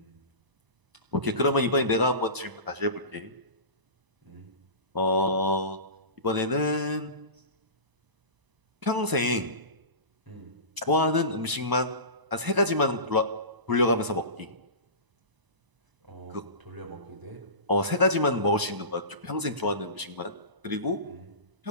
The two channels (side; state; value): left; late; 1.0 ms